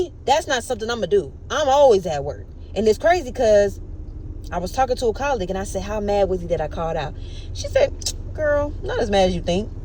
that's not something I'm going to do. I'm always at work. And it's crazy because I was talking to a colleague and I said, how mad was he that I called out? She said, girl, not as mad as you think.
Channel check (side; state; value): both; identical; correlation 1.00